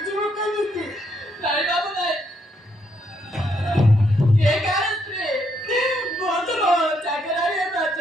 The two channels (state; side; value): normal; both; correlation 0.74